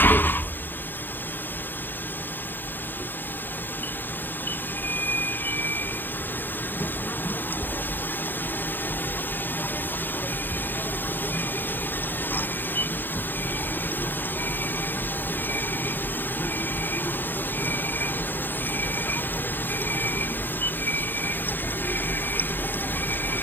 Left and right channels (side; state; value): right; late; 0.094 ms